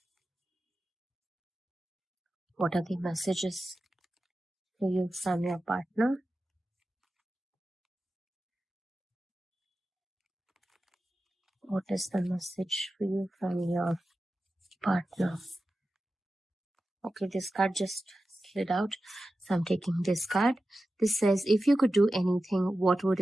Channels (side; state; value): both; normal; correlation 0.93